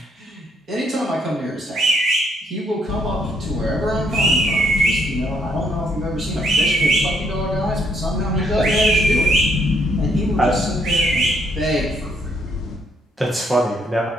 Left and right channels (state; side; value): normal; both; correlation 0.71